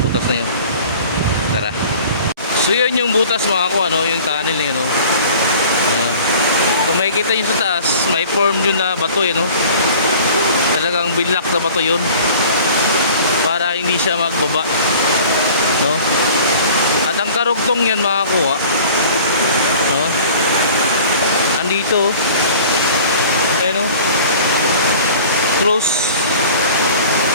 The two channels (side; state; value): both; inverted; correlation -0.45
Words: butas na yun. Tara. So yun yung butas mga ko, ano, yung tunnel yun, no? Ayan. Kung makikita nyo sa taas, may form yun na bato yun, no? Talagang binlock na bato yun para hindi siya magbaba, no? At ang karugtong yan mga kuha, no? Andito, ayun, no? Close.